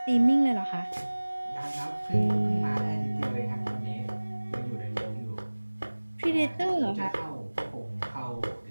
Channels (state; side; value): inverted; both; correlation -1.00